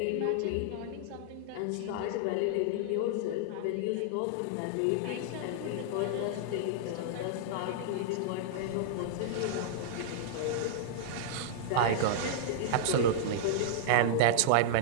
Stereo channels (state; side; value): different; both; correlation -0.01